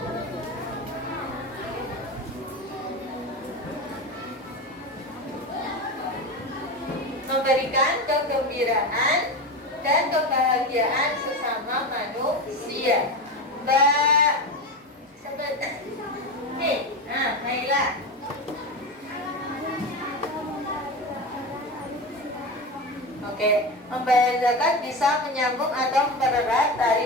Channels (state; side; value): normal; both; correlation 0.22